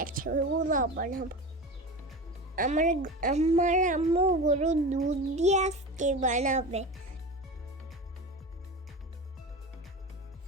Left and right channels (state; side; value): normal; both; correlation 0.28